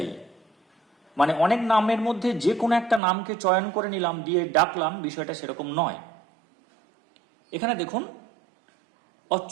মানে অনেক নামের মধ্যে যে কোনো একটা নামকে চয়ন করে নিলাম দিয়ে ডাকলাম, বিষয়টা সেরকম নয়। এখানে দেখুন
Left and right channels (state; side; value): drops out; left; at 3.0 s